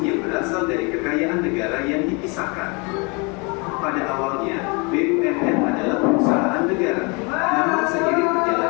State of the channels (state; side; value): quieter; right; 30.5 dB